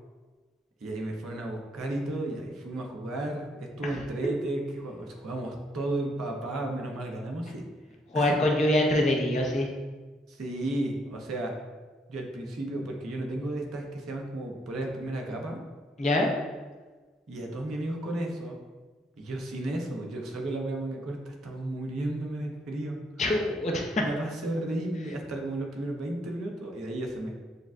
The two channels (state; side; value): normal; both; correlation 0.71